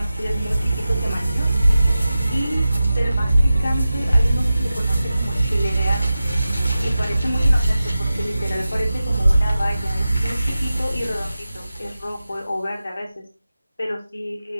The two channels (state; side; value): inverted; both; correlation -0.93